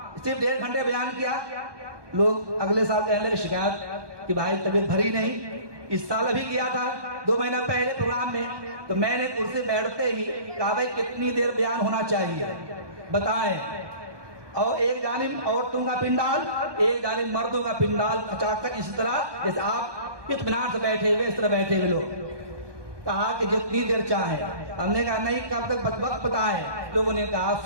صرف 1.5 گھنٹے بیان کیا. لوگ اگلے سال کہنے لگے شکایت کہ بھائی طبیعت بھری نہیں. اس سال ابھی کیا تھا 2 مہینہ پہلے پروگرام میں, تو میں نے کرسی بیٹھتے ہی کہا بھائی کتنی دیر بیان ہونا چاہیے بتائیں. اور ایک جانب عورتوں کا پنڈال, ایک جانب مردوں کا پنڈال, اچانک اسی طرح جیسے آپ اطمینان سے بیٹھے ہوئے اس طرح بیٹھے ہوئے لوگ. کہا کہ جتنی دیر چاہیں. ہم نے کہا نہیں, کب تک وقت بتائیں. لوگوں نے کہا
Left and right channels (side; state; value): left; late; 1.2 ms